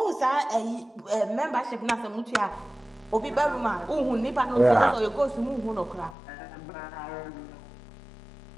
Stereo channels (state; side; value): drops out; right; at 6.2 s